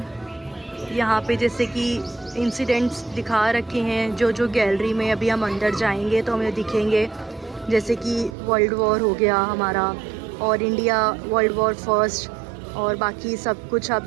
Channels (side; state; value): left; drops out; at 8.3 s